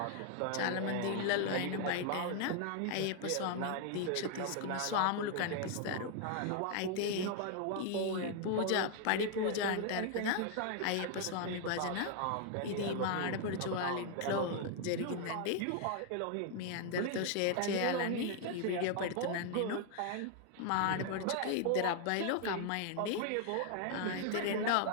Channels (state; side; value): different; both; correlation 0.00